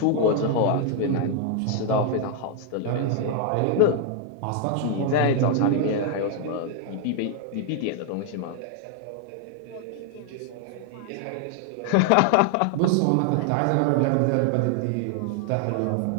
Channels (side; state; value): both; different; correlation 0.00